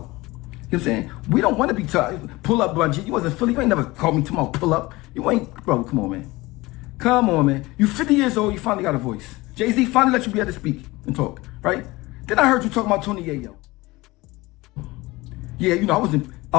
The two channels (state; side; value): quieter; right; 21.1 dB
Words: You know what I'm saying? We don't want to be tough. Pull up, Bungie. You wasn't Philly. You ain't never called me tomorrow. Pull up. You ain't, bro. Come on, man. Come on, man. You 50 years old. You finally got a voice. Jay-Z finally let you be able to speak and talk, right? Then I heard you talking about Tony Yayo. Yeah, I was